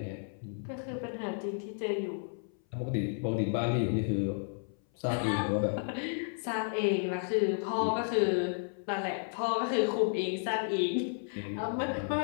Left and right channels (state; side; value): silent; right; 56 dB below the other